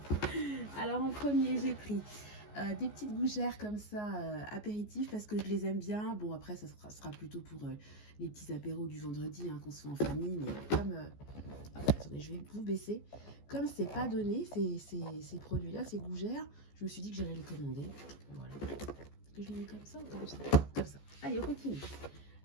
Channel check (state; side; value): late; right; 14 ms